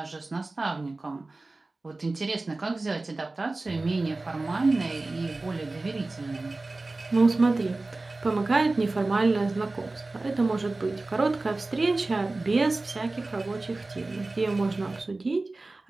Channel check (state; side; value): quieter; left; 3.2 dB